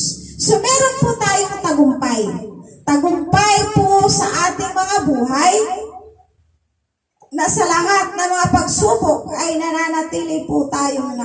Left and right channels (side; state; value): both; identical; correlation 1.00